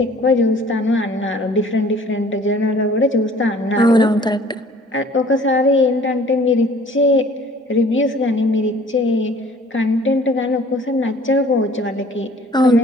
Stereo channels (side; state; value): both; normal; correlation 0.52